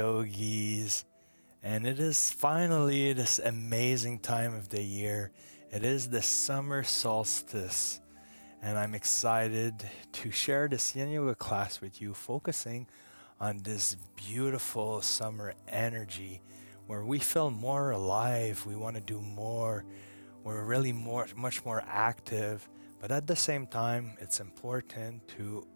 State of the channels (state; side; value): inverted; both; correlation -1.00